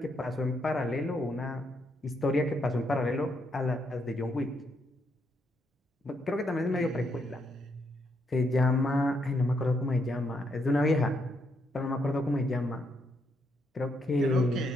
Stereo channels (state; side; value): normal; both; correlation 0.76